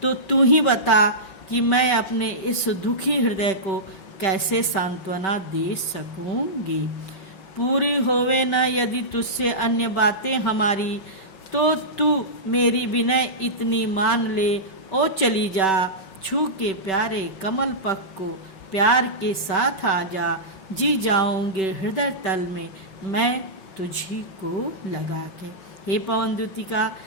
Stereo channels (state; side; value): late; right; 5.2 ms